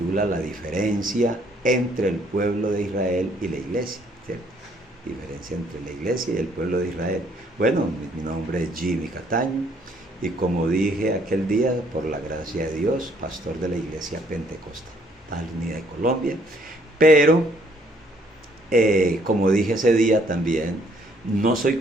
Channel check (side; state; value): both; normal; correlation 0.65